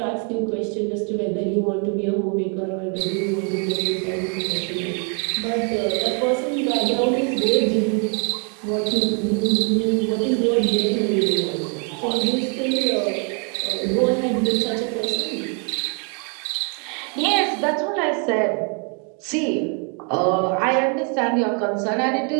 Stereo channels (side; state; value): left; quieter; 38.1 dB